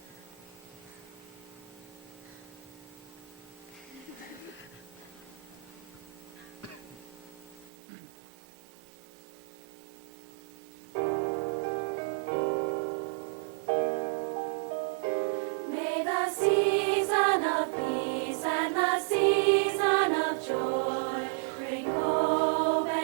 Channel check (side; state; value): left; drops out; at 7.7 s